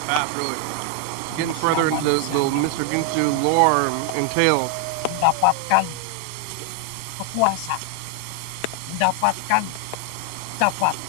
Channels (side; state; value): both; different; correlation 0.00